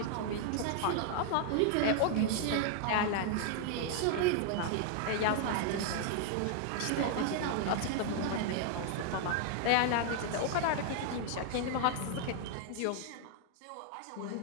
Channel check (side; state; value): both; different; correlation 0.00